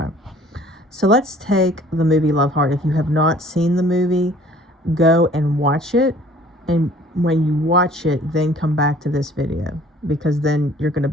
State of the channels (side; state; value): both; normal; correlation 0.53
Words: So let's take the movie Love Hard. If you have not seen the movie, go and watch it. And when you watch it, then come back to this video, because then you're going to